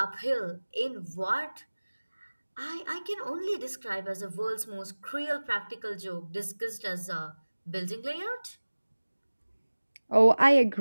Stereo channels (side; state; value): both; inverted; correlation -1.00